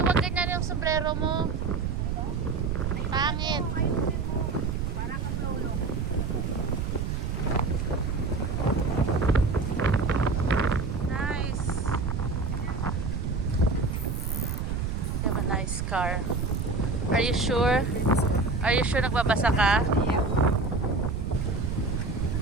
wag ganyan yung sombrero mo. Pangit. Nice. You have a nice car. Are you sure? Are you sure nagbabasa ka?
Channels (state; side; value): noise; right; rumble, 1 dB below the sound